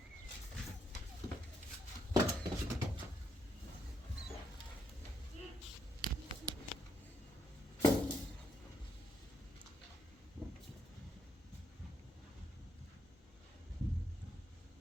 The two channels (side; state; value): both; normal; correlation 0.76